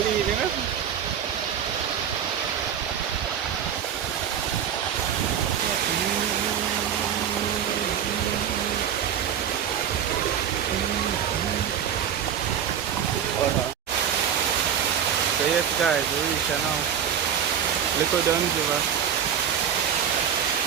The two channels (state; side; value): quieter; left; 8.8 dB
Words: you know? So yes guys, we reach now. Little Dunn River.